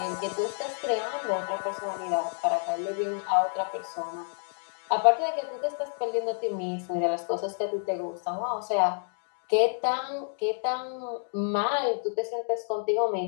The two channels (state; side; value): silent; right; digital silence